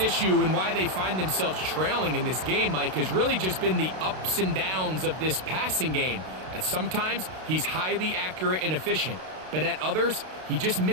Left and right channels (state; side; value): late; left; 32 ms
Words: issue and why they find themselves trailing in this game, Mike, has really just been the ups and downs of this passing game. At sometimes, he's highly accurate and efficient, but at others, he just